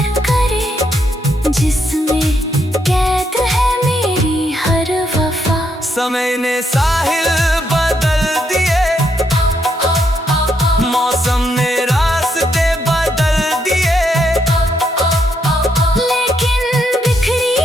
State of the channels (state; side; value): normal; both; correlation 0.77